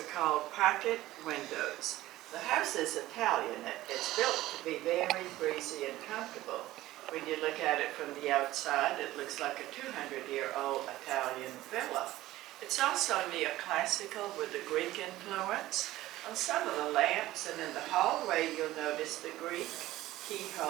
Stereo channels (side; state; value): left; quieter; 16.1 dB